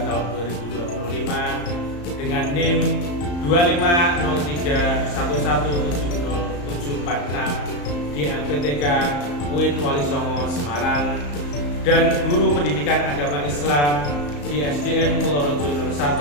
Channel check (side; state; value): right; late; 34 ms